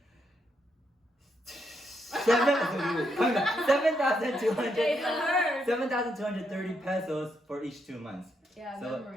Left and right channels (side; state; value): both; normal; correlation 0.79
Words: 7,230 pesos for each 2 months.